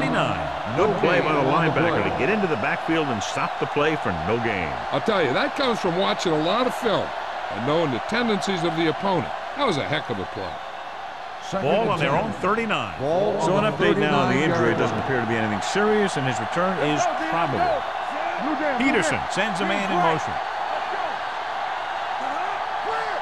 Good play by the linebacker to get into the backfield and stop the play for no gain. I'll tell you, that comes from watching a lot of film and knowing the tendencies of the opponent. That was a heck of a play. Ball on their own 39. So an update now on the injury. It doesn't appear to be anything serious, and his return is probable. Peterson sends a man in motion.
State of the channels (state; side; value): identical; both; correlation 1.00